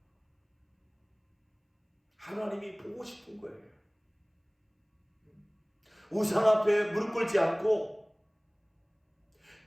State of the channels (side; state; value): both; identical; correlation 1.00